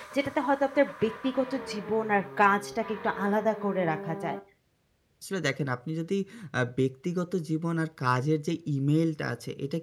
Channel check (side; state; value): both; identical; correlation 1.00